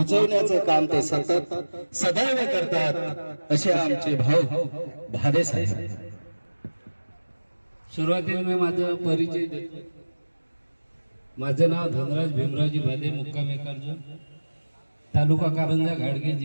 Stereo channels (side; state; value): both; inverted; correlation -1.00